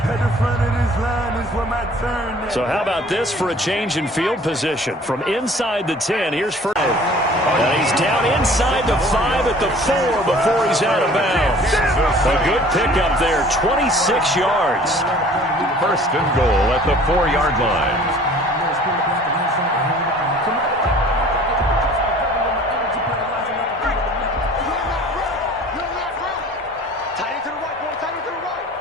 So how about this for a change in field position? From inside the 10, here's first. And he's down inside the 5 at the 4 before he's out of bounds. A good pickup there, 26 yards. 1st and goal at the 4-yard line.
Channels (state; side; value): normal; both; correlation 0.49